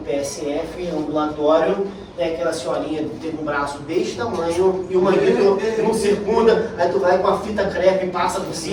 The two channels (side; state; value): both; identical; correlation 1.00